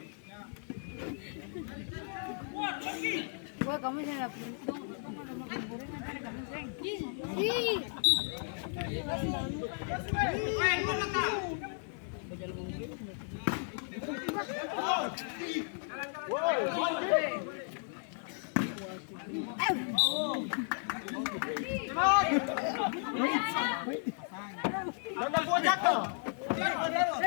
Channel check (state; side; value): silent; right; 55 dB below the other